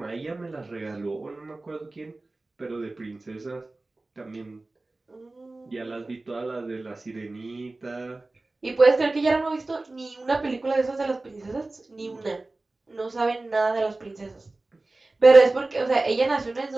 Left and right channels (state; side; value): quieter; left; 3.1 dB